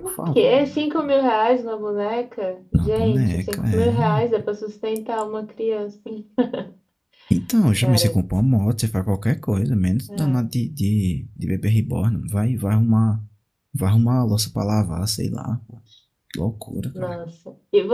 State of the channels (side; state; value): both; identical; correlation 1.00